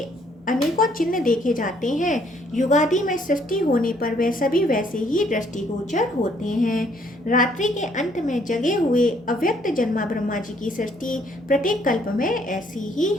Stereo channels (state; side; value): normal; both; correlation 0.66